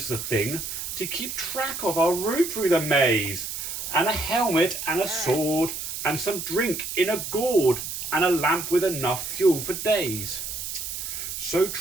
the thing to keep track of our route through the maze. And a helmet and a sword and some drink in a gourd and a lamp with enough fuel for days. So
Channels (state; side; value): noise; right; hiss, 6 dB below the sound